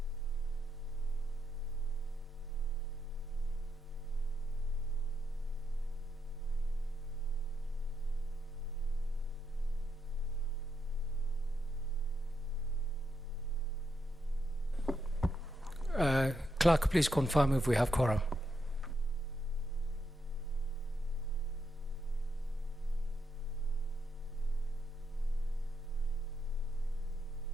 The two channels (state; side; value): normal; both; correlation 0.80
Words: Clerk, please confirm if we have quorum.